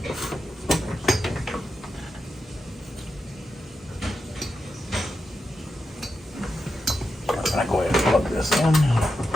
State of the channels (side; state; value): both; normal; correlation 0.88